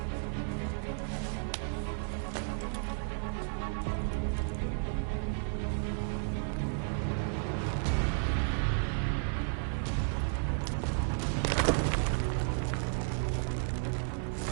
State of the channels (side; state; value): left; silent; 56 dB below the other